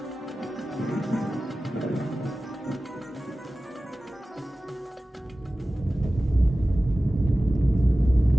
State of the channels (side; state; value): both; normal; correlation 0.96